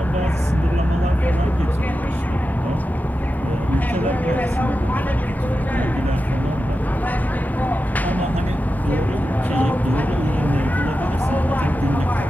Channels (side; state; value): both; normal; correlation 0.91